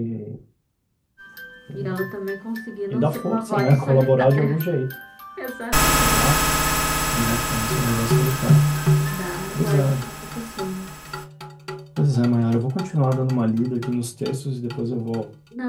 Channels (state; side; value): identical; both; correlation 1.00